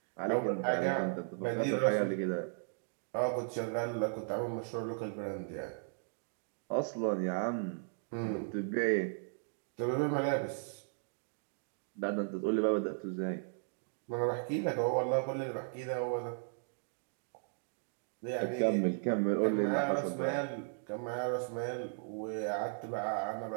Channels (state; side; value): silent; left; digital silence